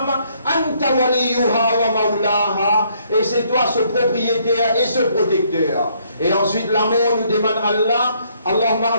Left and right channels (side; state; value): both; inverted; correlation -0.68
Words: anta waliyuha wa maulaha, et c'est toi ce propriétaire et ce protecteur. Et ensuite l'amour nous demande Allah Allahumma